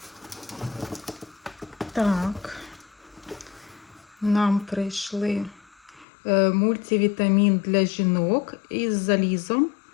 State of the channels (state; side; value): drops out; right; at 6.1 s